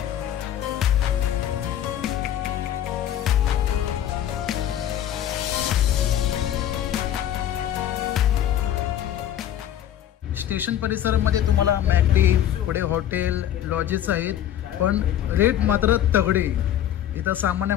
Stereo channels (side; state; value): right; quieter; 11.1 dB